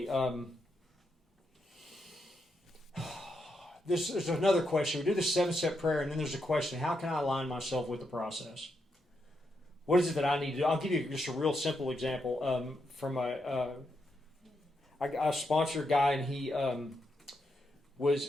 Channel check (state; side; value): normal; both; correlation 0.82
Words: There's another question. We do the 7-step prayer, and then there's a question: how can I align myself with the process? What is it that I need to do? I'll give you just a real simple example from I sponsor a guy, and he